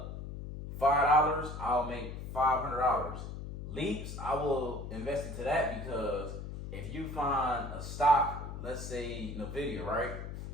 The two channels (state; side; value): noise; left; hum, 8 dB below the sound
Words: $5, I'll make $500. Leaps, I will invest into that, because if you find a stock, let's say NVIDIA, right?